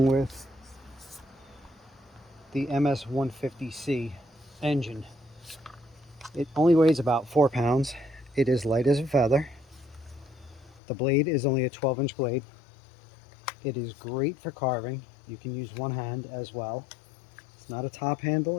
with the MS-150C engine. It only weighs about 4 pounds. It is light as a feather. The blade is only a 12-inch blade. It is great for carving. You can use one hand as well. It's not a top handle,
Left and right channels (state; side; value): drops out; right; at 10.8 s